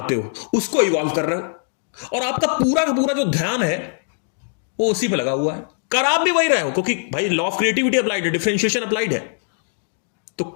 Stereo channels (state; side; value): silent; right; digital silence